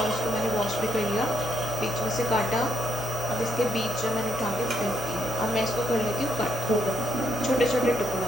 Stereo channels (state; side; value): normal; both; correlation 0.73